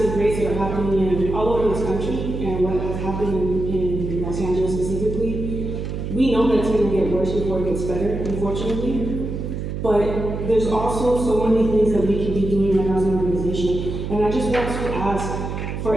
raids that are happening all over this country and what has happened in Los Angeles specifically, we know that it's going to get worse before it gets better, unfortunately. But there's also so many things that we can be doing right now as an organization. And I just want to ask, for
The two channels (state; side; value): noise; right; hum, 5 dB below the sound